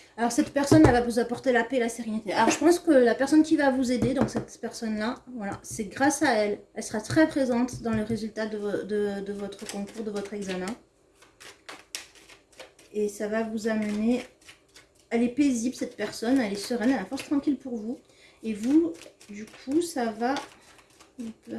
Alors cette personne elle va vous apporter la paix et la sérénité. Alors je pense que la personne qui va vous aider, donc cette personne-là, voilà, c'est grâce à elle. Elle sera très présente dans le résultat de votre concours, de votre examen. Et ça va vous amener... Elle est paisible cette personne, elle est sereine, elle a la force tranquille pour vous. Et vous, du coup, ça va vous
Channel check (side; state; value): both; identical; correlation 1.00